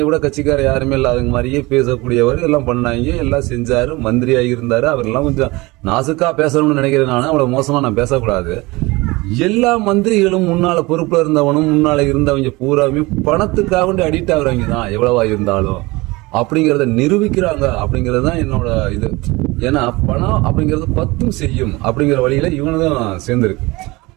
விட கட்சிக்கார யாருமே இல்லாத மாதிரியே பேசக்கூடியவர், எல்லாம் பண்ணாங்க, எல்லாம் செஞ்சாரு, மந்திரியாக இருந்தாரு. அவரெல்லாம் கொஞ்சம் நாசுக்கா பேசணும்னு நினைக்கிறேன். நான் அவ்வளவு மோசமா நான் பேசக்கூடாது. எல்லா மந்திரிகளும் முன்னால பொறுப்புல இருந்தவனும் முன்னால இருந்தவங்க பூராமே பணத்துக்காக வேண்டி அடிக்ட் ஆகுறவங்க தான் எவ்வளவா இருந்தாலும் அப்படிங்கிறத நிரூபிக்கிறாங்க. அப்படிங்கிறது தான் என்னோட இது. ஏன்னா பணம் அப்படிங்கிறது பத்தும் செய்யும் அப்படிங்கிற வழியில இவனுதான் சேர்ந்திருக்கு.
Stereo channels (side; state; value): left; quieter; 22.7 dB